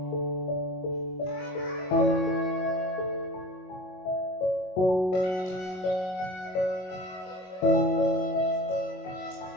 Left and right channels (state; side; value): late; right; 22 ms